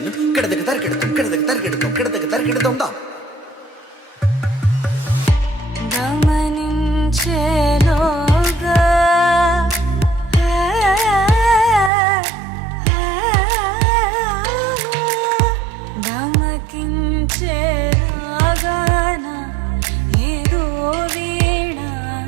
కిడతక తరిగిడతాం కిడతక తరిగిడతాం కిడతక తరిగిడతాం దా. గమనించేలోగా గమకించేలాగాన ఏదో వీణ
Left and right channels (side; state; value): left; drops out; at 11.9 s